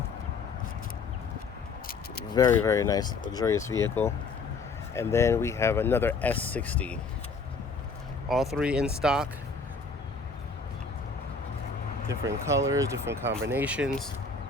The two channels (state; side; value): quieter; right; 4.3 dB